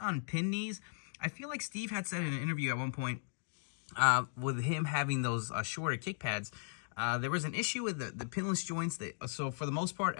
pin knees. I feel like Steve had said in an interview at one point with him having those shorter kick pads, there was an issue with the pinless joints. So for the most part,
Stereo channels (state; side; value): silent; right; digital silence